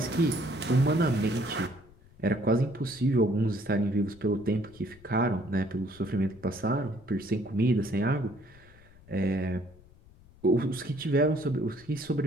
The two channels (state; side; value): noise; left; rumble, 25 dB below the sound